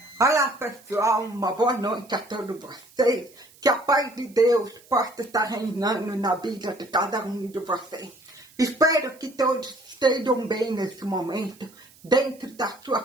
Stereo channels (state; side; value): noise; right; hiss, 26 dB below the sound